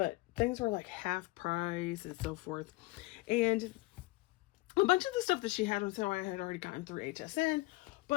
things were like half price and so forth. And a bunch of the stuff that she had on sale I had already gotten through HSN,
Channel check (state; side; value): quieter; right; 21.3 dB